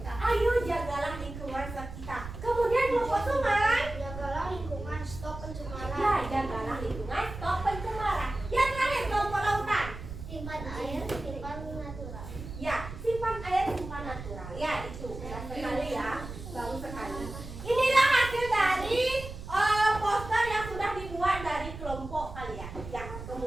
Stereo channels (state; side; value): noise; right; rumble, 11 dB below the sound